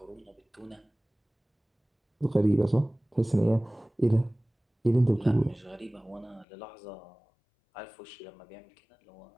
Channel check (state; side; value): drops out; right; at 6.5 s